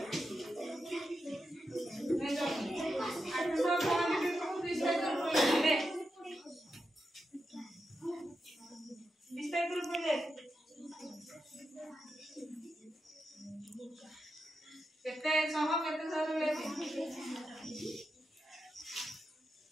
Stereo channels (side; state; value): both; normal; correlation 0.87